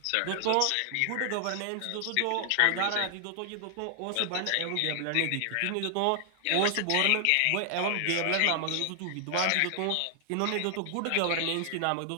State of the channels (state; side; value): different; both; correlation 0.00